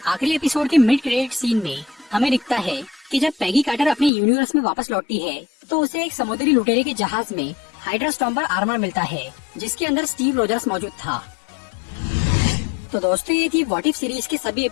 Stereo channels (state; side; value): drops out; right; at 4.1 s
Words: आखिरी एपिसोड के मिड क्रेडिट सीन में हमें दिखता है कि जब पैगी कार्टर अपने यूनिवर्स में वापस लौटती है तो उसे एक समुद्री लुटेरे के जहाज में हाइड्रा स्टॉम्पर आर्मर मिलता है, जिसके अंदर स्टीव रोजर्स मौजूद था। तो दोस्तों, ये थी व्हाट इफ सीरीज के सभी